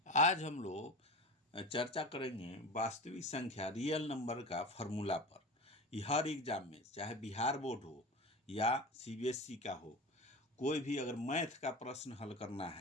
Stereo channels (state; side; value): normal; both; correlation 0.30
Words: आज हम लोग चर्चा करेंगे वास्तविक संख्या रियल नंबर का फॉर्मूला पर। ये हर एग्जाम में, चाहे बिहार बोर्ड हो या सीबीएसई का हो, कोई भी अगर मैथ का प्रश्न हल करना